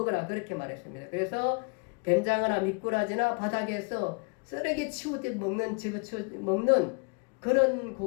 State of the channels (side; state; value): right; quieter; 34.3 dB